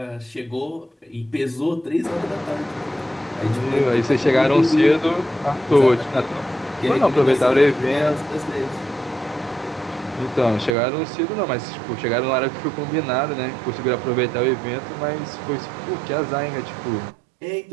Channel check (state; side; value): drops out; left; at 10.7 s